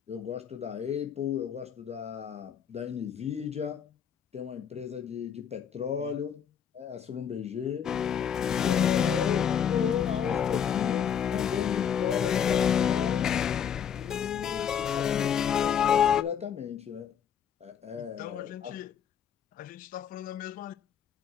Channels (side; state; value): right; quieter; 8.3 dB